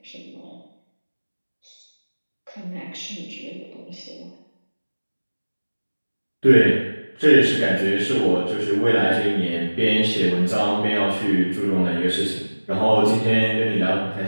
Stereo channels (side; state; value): both; inverted; correlation -1.00